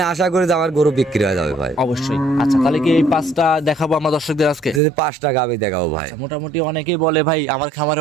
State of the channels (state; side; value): drops out; left; at 4.8 s